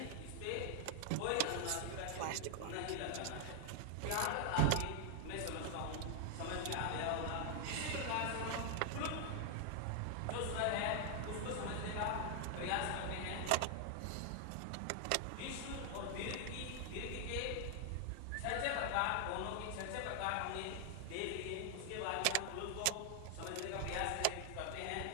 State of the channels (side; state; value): both; different; correlation 0.00